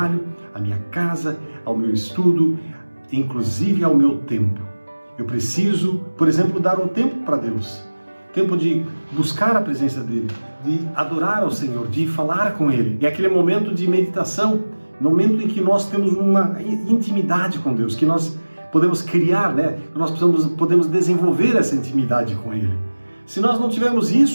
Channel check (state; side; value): inverted; both; correlation -1.00